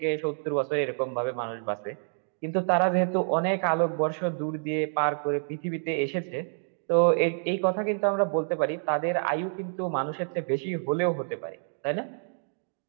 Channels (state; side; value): silent; left; 59 dB below the other